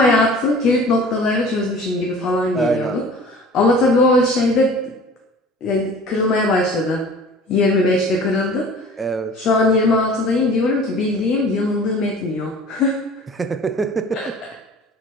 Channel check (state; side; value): normal; both; correlation 0.44